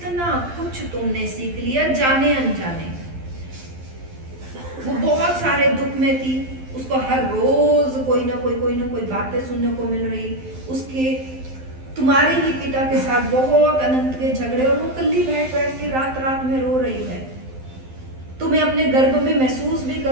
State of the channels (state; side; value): late; left; 12 ms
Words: कुछ तुमने सीख लिया जाने अनजाने। वो बहुत सारे दुख में थी, उसको हर रोज कोई ना कोई बातें सुनने को मिल रही। उसके तुम्हारे ही पिता के साथ बहुत अनंत के झगड़े, और वो कल्ली बैठ के रात रात में रो रही है। तुम्हें अपने गर्भ में महसूस भी